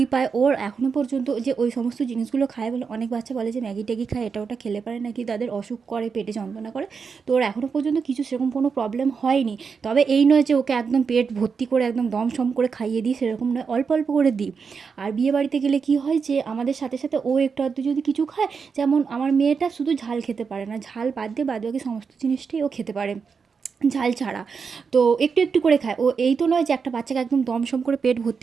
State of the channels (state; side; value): quieter; left; 5.7 dB